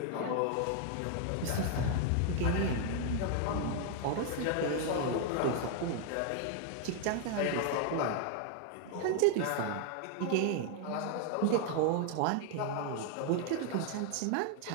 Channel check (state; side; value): different; both; correlation 0.00